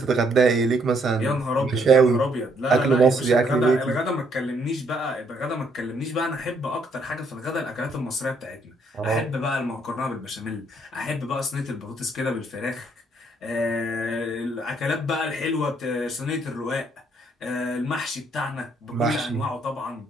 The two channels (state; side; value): normal; both; correlation 0.70